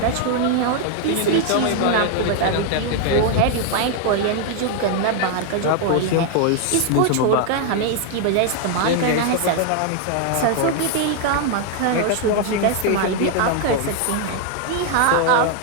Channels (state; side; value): different; both; correlation 0.00